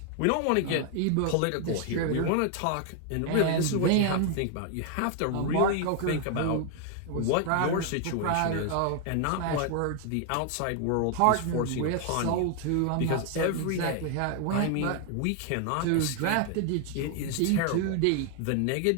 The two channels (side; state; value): both; different; correlation 0.00